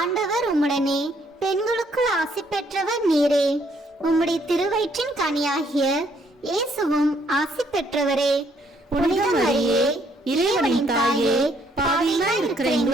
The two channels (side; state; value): both; normal; correlation 0.68